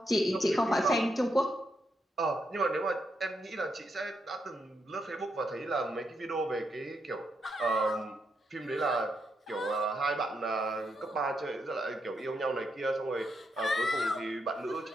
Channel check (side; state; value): both; normal; correlation 0.81